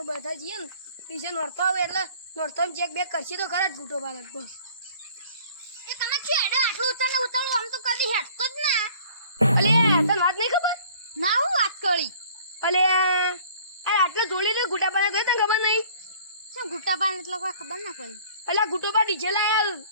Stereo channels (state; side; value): inverted; both; correlation -0.52